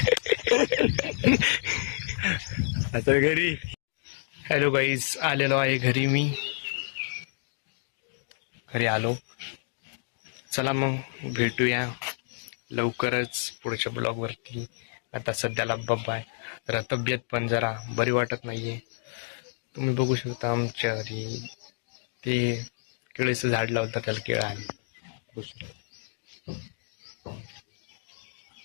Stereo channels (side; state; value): right; silent; digital silence